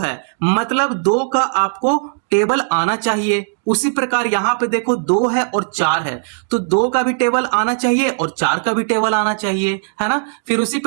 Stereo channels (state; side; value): silent; left; digital silence